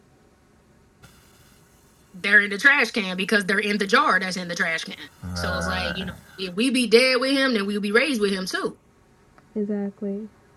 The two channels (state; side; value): identical; both; correlation 1.00